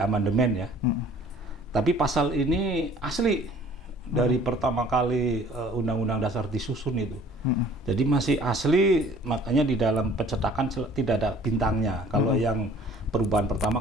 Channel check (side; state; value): both; normal; correlation 0.52